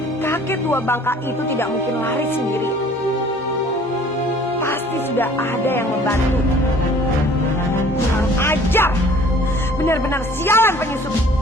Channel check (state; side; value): normal; both; correlation 0.53